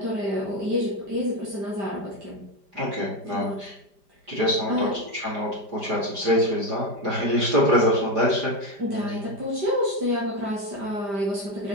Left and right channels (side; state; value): left; late; 5.0 ms